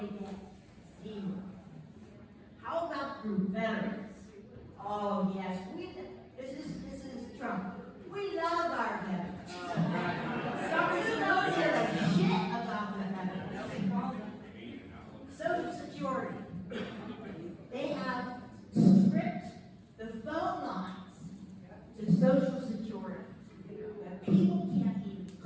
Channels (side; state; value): both; identical; correlation 1.00